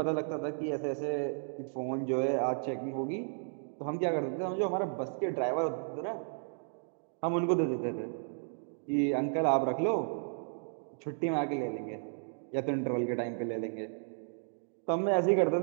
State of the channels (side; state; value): left; silent; digital silence